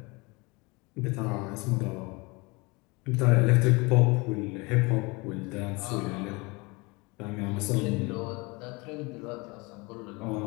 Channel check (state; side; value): quieter; right; 26.3 dB